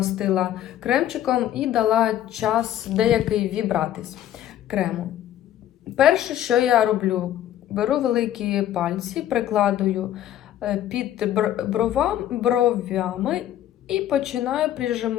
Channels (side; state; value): right; quieter; 11.8 dB